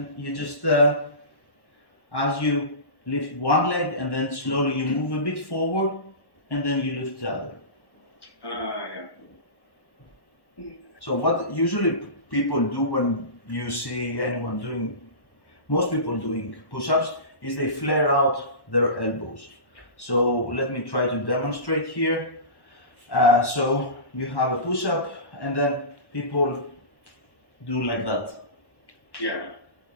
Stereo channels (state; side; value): late; right; 1.1 ms